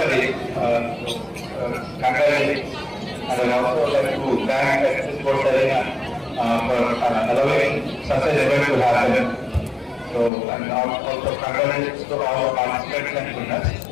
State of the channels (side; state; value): right; drops out; at 10.3 s